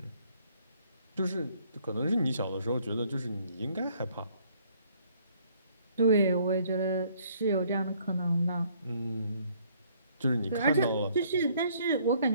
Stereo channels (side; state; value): both; inverted; correlation -0.62